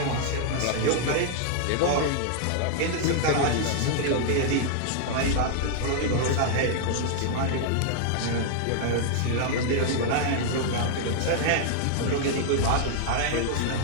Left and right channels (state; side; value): different; both; correlation -0.01